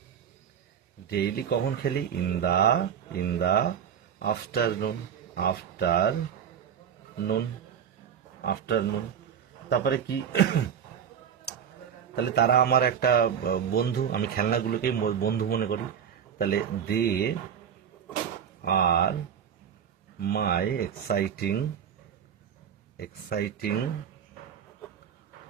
ডেইলি কখন খেলি, ইন দা আফটারনুন। তারপরে কি তাহলে তারা আমার একটা বন্ধু, আমি খেলনাগুলোকেই বন্ধু মনে করি, তাহলে দে আর মাই এক্সাইটিং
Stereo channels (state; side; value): quieter; left; 8.2 dB